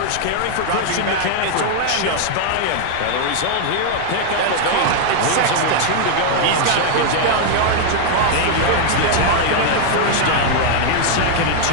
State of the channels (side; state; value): both; different; correlation 0.00